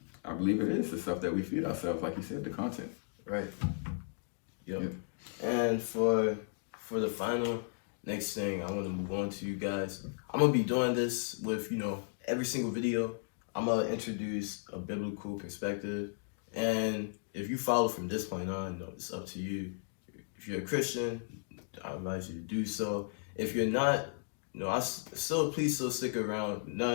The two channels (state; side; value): silent; right; digital silence